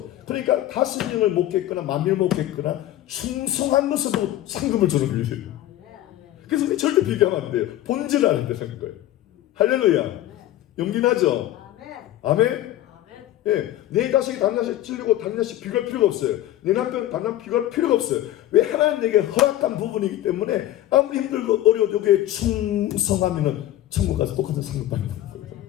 그러니까 5명을 목했거나 10,000명을 목했거나 충성한 것으로 상금을 주는 거예요. 그래서 우리 절대 비교하면 안 돼요. 본질을 아는 데는 거예요. 할렐루야. 용기나죠? 아멘. 예, 내 자식이 다른 자식 찔리고 다른 자식 비교할 필요가 없어요. 내 남편 다른 남편 비교할 필요가 없어요. 왜? 하나님 내게 허락한 부분이기 때문에 아무리 힘들고 어려워도 여기에 충성하면은 천국 가서 똑같은 상급 받는 거예요.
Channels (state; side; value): quieter; right; 13.8 dB